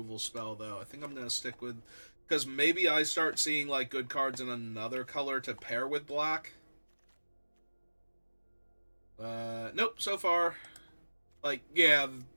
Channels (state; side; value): inverted; both; correlation -1.00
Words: spell, though. I think I'm going to stick with... Because maybe I start seeing, like, good cards in another color to pair with black. Nope, so far... Like, yeah,